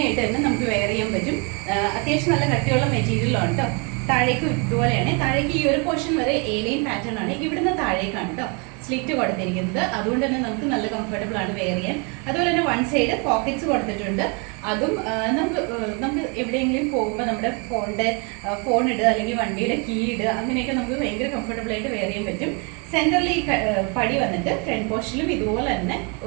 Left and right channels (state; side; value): quieter; left; 33.7 dB